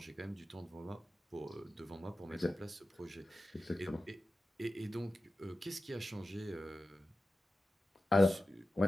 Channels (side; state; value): both; normal; correlation 0.94